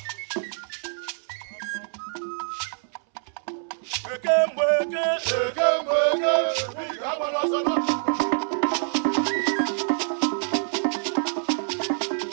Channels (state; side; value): silent; left; 61 dB below the other